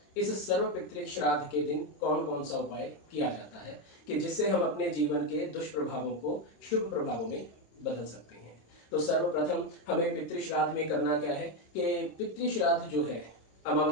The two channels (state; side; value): late; right; 26 ms